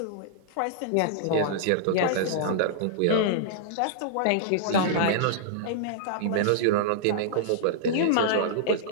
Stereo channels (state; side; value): different; both; correlation -0.02